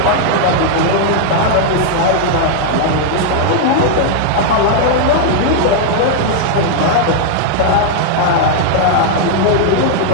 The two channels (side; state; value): both; different; correlation -0.01